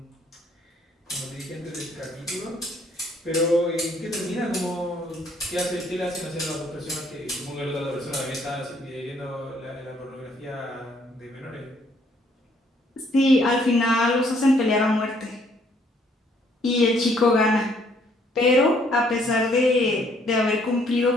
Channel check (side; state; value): both; normal; correlation 0.66